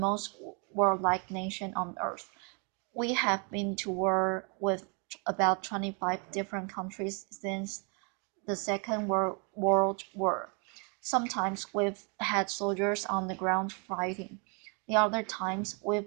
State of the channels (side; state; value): left; quieter; 36.2 dB